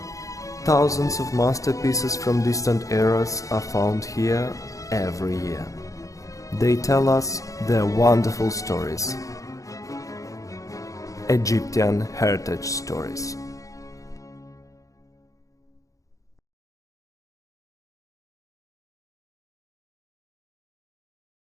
Thousands of masterpieces from distant eras are found here every year. They tell us their wonderful stories. Egyptian heritage stories.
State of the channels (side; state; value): right; late; 0.16 ms